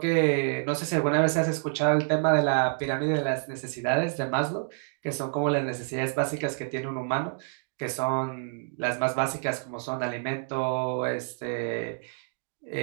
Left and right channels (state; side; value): silent; left; 59 dB below the other